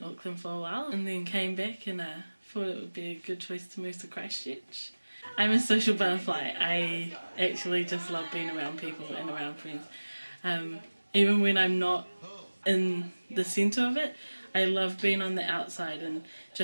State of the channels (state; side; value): inverted; both; correlation -1.00